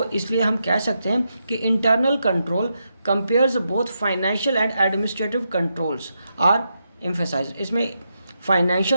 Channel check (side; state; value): both; inverted; correlation -0.84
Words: इसलिए हम कह सकते हैं कि internal control compares both financial and administrative controls are emphasise. इसमें